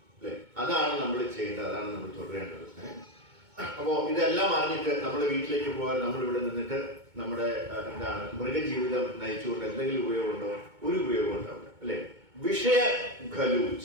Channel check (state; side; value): late; left; 2.2 ms